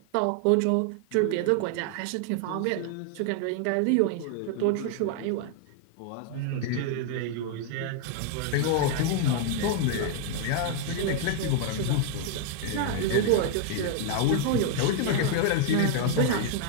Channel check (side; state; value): both; different; correlation 0.00